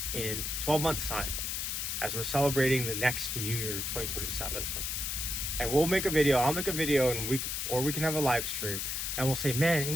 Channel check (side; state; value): left; noise; hiss, 2 dB below the sound